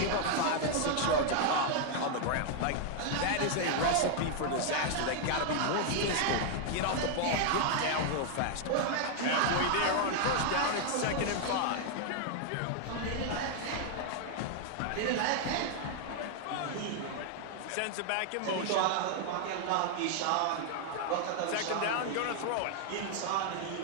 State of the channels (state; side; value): different; both; correlation 0.00